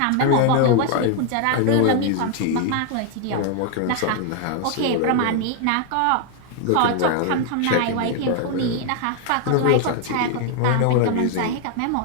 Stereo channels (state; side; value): different; both; correlation 0.00